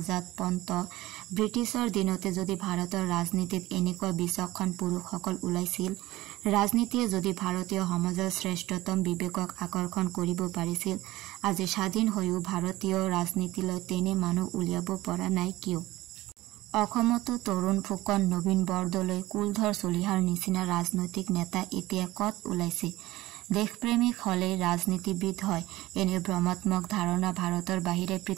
পন্ত ব্ৰিটিছৰ দিনতে যদি ভাৰতৰ ৰাজনীতিত এনেকুৱা বিচক্ষণ পুৰুষসকল ওলাইছিল, ৰাজনীতিয়ে যদি ভাৰতীয় সমাজৰ শ্ৰেষ্ঠতম বিবেকক আকৰ্ষণ কৰিব পাৰিছিল, আজি স্বাধীন হৈও ভাৰতীয় ৰাজনীতিলৈ তেনে মানুহ উলিয়াব পৰা নাই কিয়? অসমতো তৰুণ ফুকন, নবীন বৰদলৈ, কুলধৰ চলিহাৰ নিচিনা ৰাজনৈতিক নেতা এতিয়া কত ওলাইছে? দেশপ্ৰেমিক হলে ৰাজনীতিবিদ হয়, এনে ভ্ৰমাত্মক ধাৰণা ভাৰতৰ বাহিৰে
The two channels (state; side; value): quieter; left; 17.8 dB